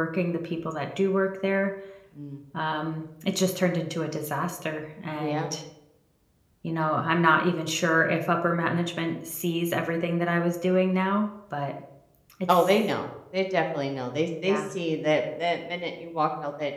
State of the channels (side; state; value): both; identical; correlation 1.00